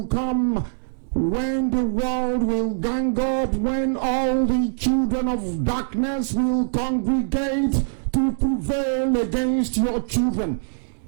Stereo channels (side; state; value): left; silent; digital silence